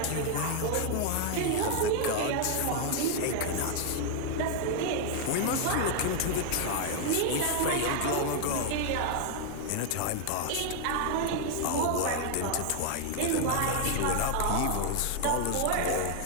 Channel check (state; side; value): different; both; correlation 0.00